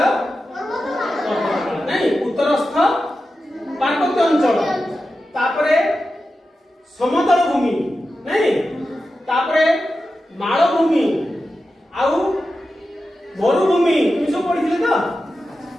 नहीं उत्तरस्थ पार्वत्य अंचल तापरे समतल भूमि नहीं तापरे मालभूमि आउ मरुभूमि सब पढ़ी तो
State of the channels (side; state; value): both; normal; correlation 0.91